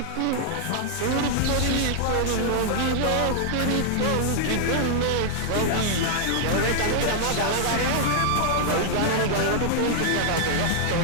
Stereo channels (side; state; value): both; different; correlation 0.00